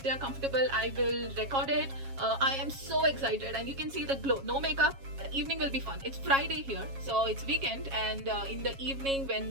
they are comfortable, I will record it. I am so excited, and you can see the glow. No makeup. The evening will be fun. It's Friday here, so it's weekend, and in the evening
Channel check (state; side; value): late; left; 7.3 ms